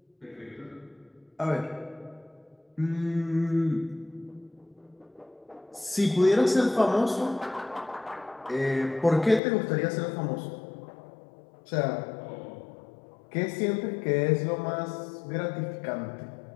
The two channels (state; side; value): drops out; right; at 9.4 s